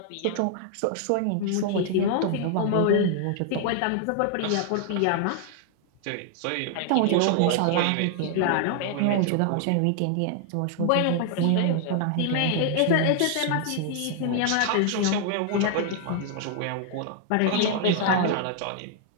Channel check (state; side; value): different; both; correlation 0.00